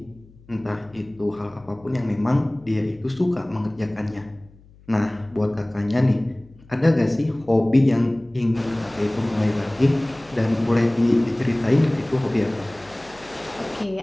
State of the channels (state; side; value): noise; left; hum, 26 dB below the sound